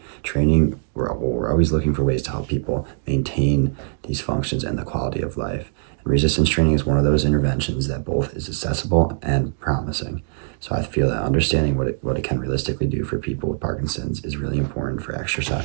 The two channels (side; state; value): left; silent; digital silence